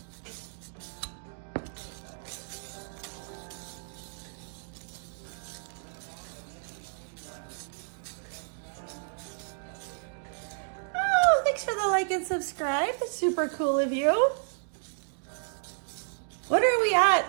for the like and subscribe. That's super cool of you. What are we at?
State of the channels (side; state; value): left; silent; digital silence